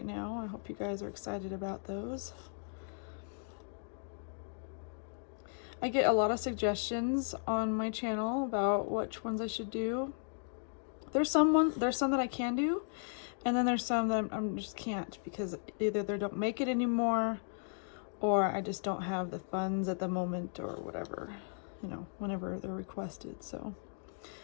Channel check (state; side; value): silent; right; digital silence